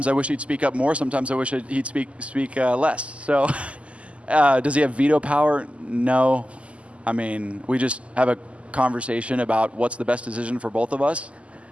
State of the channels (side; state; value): left; late; 0.060 ms